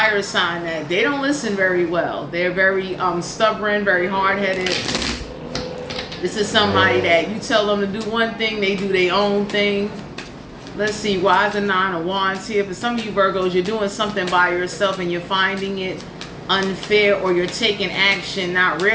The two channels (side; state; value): both; identical; correlation 1.00